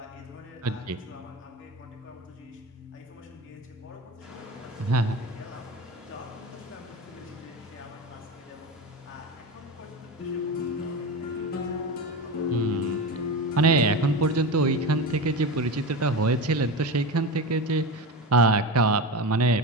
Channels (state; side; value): normal; both; correlation 0.23